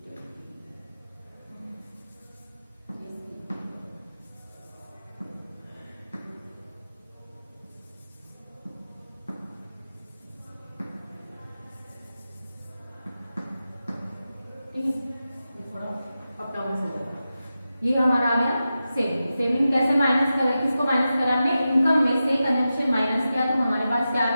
ये हमारा आ गया सेविंग। सेविंग कैसे माइनस करें, किसको माइनस करा हमने, इनकम में से कंजम्पशन माइनस किया, तो हमारे पास क्या आ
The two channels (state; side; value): inverted; both; correlation -0.92